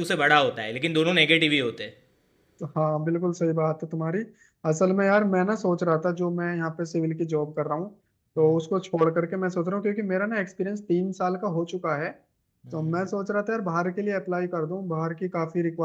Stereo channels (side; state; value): both; identical; correlation 1.00